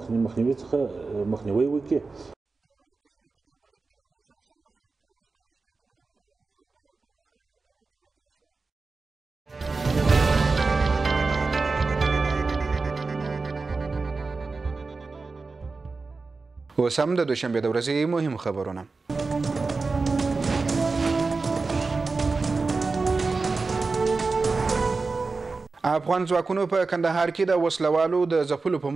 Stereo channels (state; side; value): quieter; left; 4.0 dB